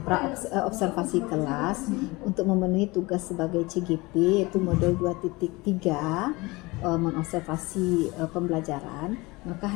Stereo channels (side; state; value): right; quieter; 23.2 dB